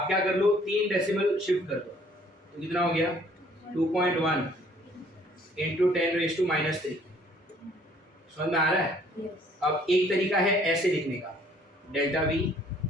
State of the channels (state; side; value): normal; both; correlation 0.59